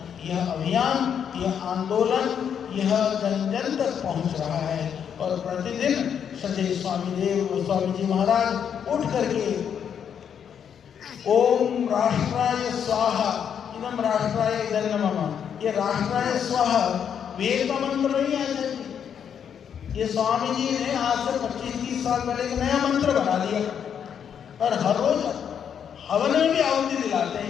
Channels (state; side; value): quieter; right; 8.1 dB